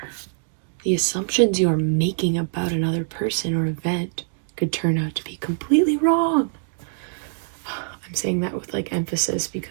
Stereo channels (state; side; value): silent; left; digital silence